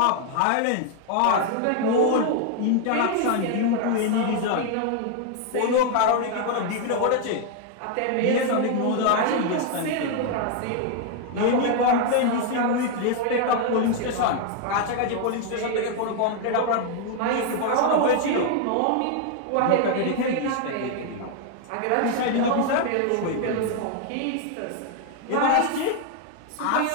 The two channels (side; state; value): both; different; correlation 0.00